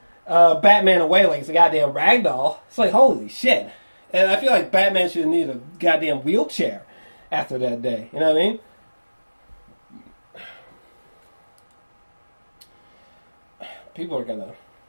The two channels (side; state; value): both; inverted; correlation -1.00